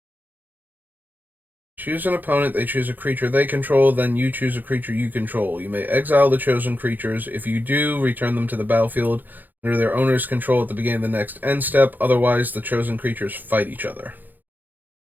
Choose an opponent, they choose a creature they control, then you choose a creature you control. You may exile the chosen creatures. If you do, return them to the battlefield under their owner's control at the beginning of the next end step. Otherwise, the chosen creatures fight each other.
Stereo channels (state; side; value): late; left; 0.086 ms